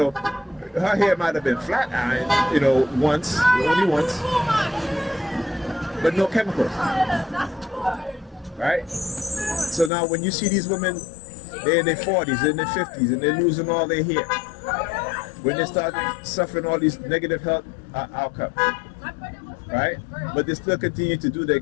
hair might have been flat ironed, once, only once, but no chemicals, right? So now when you see these women, they're in their 40s, in their 50s, and they're losing all their hair, when they start suffering all these negative health outcomes, right? But they still continue to do the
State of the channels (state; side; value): drops out; right; at 9.9 s